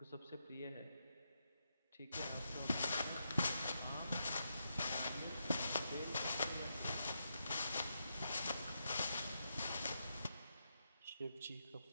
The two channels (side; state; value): both; inverted; correlation -0.83